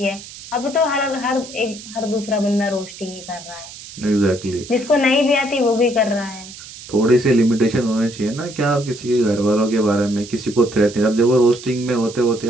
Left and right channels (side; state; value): right; noise; hiss, 15 dB below the sound